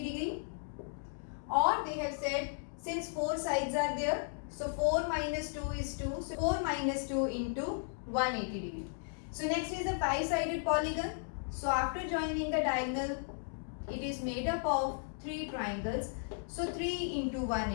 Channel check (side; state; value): right; silent; digital silence